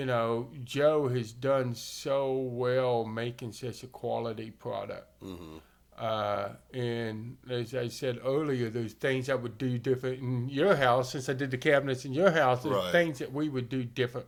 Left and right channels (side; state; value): both; identical; correlation 1.00